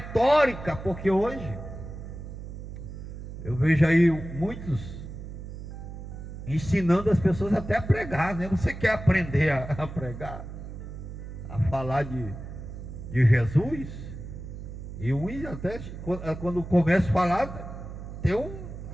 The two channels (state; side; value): noise; right; hum, 10 dB below the sound